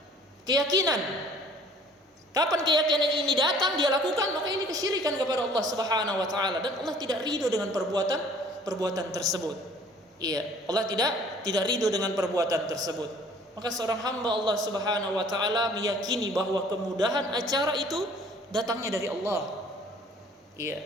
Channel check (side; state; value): both; normal; correlation 0.53